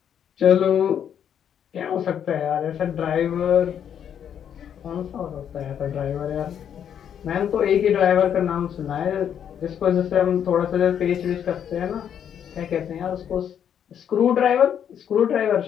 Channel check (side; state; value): right; quieter; 8.9 dB